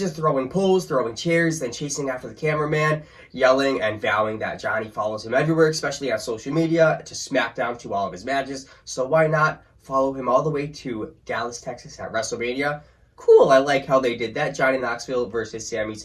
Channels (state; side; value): identical; both; correlation 1.00